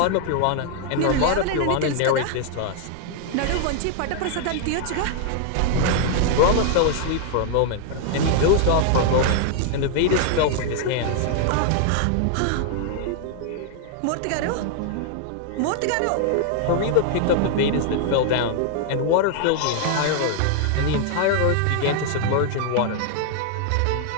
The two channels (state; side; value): different; both; correlation 0.00